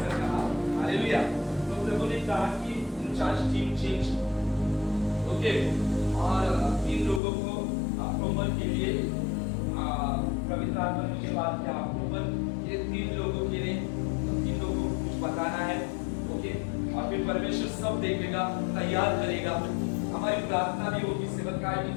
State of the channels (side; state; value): right; drops out; at 7.2 s